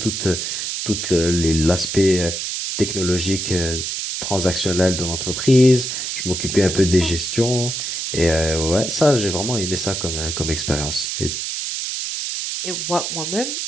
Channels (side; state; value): right; noise; hiss, 3 dB below the sound